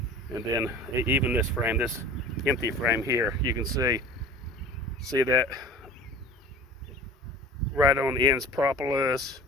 And then even this frame, this empty frame here, you can see that right on the end's propolis.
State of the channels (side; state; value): both; normal; correlation 0.40